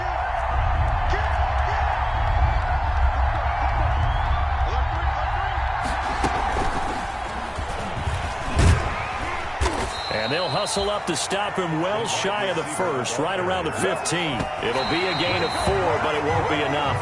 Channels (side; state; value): both; identical; correlation 1.00